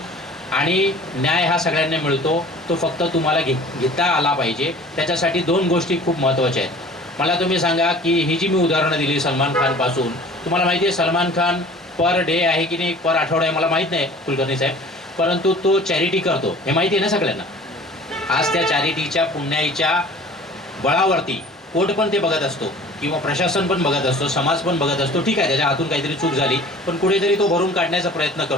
आणि न्याय हा सगळ्यांना मिळतो, तो फक्त तुम्हाला घेता आला पाहिजे. त्याच्यासाठी 2 गोष्टी खूप महत्त्वाच्या आहेत. मला तुम्ही सांगा की ही जी मी उदाहरणं दिली सलमान खानपासून, तुम्हाला माहिती आहे सलमान खान पर डे आहे की नाही, पर आठवडा आहे मला माहीत नाही कुलकर्णी साहेब, परंतु तो चॅरिटी करतो, हे माहिती आहे ना सगळ्यांना. आज त्या चॅरिटीच्या पुण्याईच्या बळावरती कोर्ट पण ते बघत असतो किंवा प्रशासन पण बघत असतो, समाज पण बघत असतो. ठीक आहे, त्याच्या हातून काहीतरी चूक झाली, पण कुठेतरी तो भरून काढण्याचा प्रयत्न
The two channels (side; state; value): both; normal; correlation 0.46